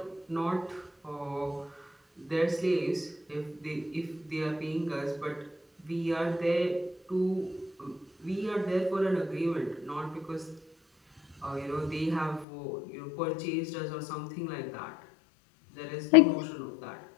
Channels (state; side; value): drops out; right; at 12.5 s